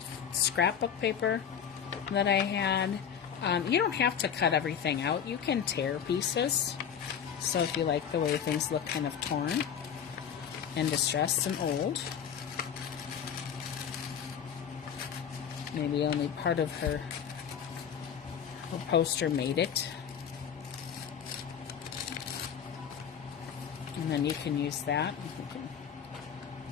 scrapbook paper that I had. You don't have to cut everything out. You can tear pieces. So if you like the way things look kind of torn and distressed and old, maybe only part of her poster made it. And then you can use that. You can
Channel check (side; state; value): right; quieter; 8.1 dB